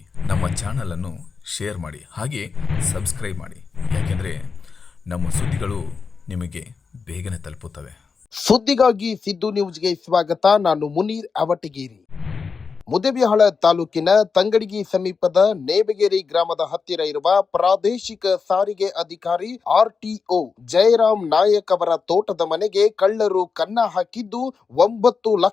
ನಮ್ಮ ಚಾನಲ್ ಅನ್ನು ಶೇರ್ ಮಾಡಿ, ಹಾಗೆ ಸಬ್ಸ್ಕ್ರೈಬ್ ಮಾಡಿ. ಯಾಕೆಂದರೆ ನಮ್ಮ ಸುದ್ದಿಗಳು ನಿಮಗೆ ಬೇಗನೆ ತಲುಪುತ್ತವೆ. ಸುದ್ದಿಗಾಗಿ ಸಿದ್ದು ನ್ಯೂಸ್ಗೆ ಸ್ವಾಗತ. ನಾನು ಮುನೀರ್ ಅವಟಗಿರಿ. ಮುದ್ದೇಬಿಹಾಳ ತಾಲೂಕಿನ ತಂಗಡಗಿ ಸಮೀಪದ ನೇಬಗೇರಿ ಗ್ರಾಮದ ಹತ್ತಿರ ಇರುವ ಪ್ರಾದೇಶಿಕ ಸಾರಿಗೆ ಅಧಿಕಾರಿ RTO ಜಯರಾಮ್ ನಾಯಕ್ ಅವರ ತೋಟದ ಮನೆಗೆ ಕಳ್ಳರು ಕನ್ನ ಹಾಕಿದ್ದು 9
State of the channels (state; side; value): quieter; right; 5.2 dB